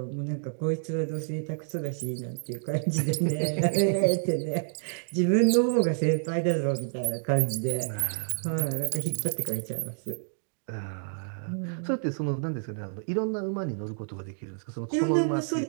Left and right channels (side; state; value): left; silent; digital silence